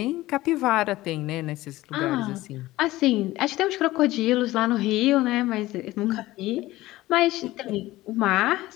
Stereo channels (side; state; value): right; quieter; 17.4 dB